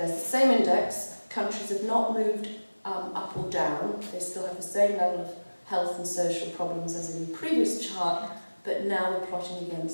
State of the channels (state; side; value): inverted; both; correlation -1.00